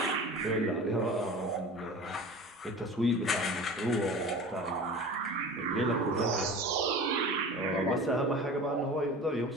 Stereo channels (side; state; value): both; normal; correlation 0.37